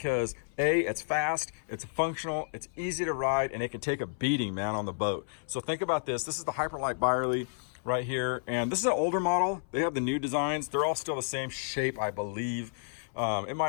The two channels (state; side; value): silent; right; 57 dB below the other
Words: A, it's fast, it's functional, it's easy to ride, and it can take a beating, man, on the boat. So think about this. This is the Hyperlight Byerly right here. And this is an older model. They have the new designs. They're all still the same shape, I believe. It